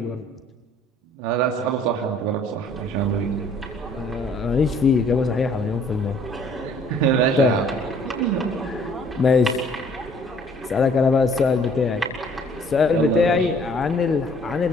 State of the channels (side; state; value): both; normal; correlation 0.58